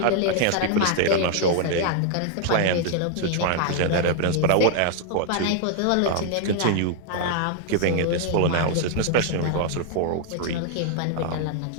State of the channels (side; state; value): both; different; correlation 0.00